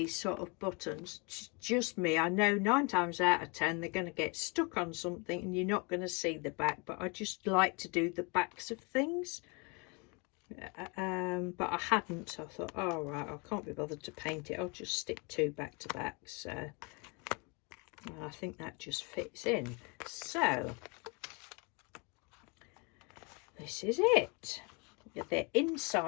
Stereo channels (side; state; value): right; quieter; 31.3 dB